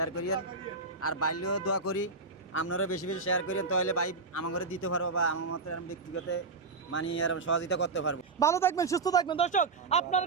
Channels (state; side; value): quieter; left; 4.2 dB